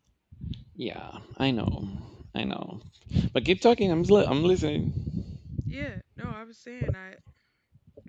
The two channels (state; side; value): identical; both; correlation 1.00